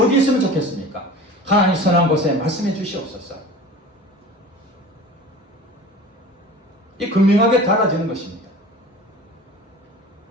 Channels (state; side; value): normal; both; correlation 0.39